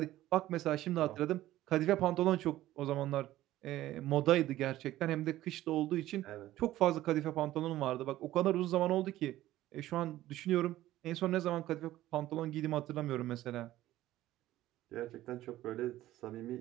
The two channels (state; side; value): quieter; left; 14.9 dB